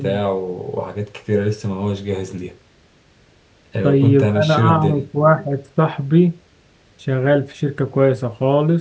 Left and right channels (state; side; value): identical; both; correlation 1.00